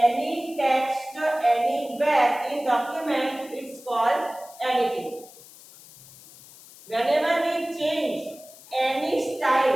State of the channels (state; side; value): noise; left; hiss, 21 dB below the sound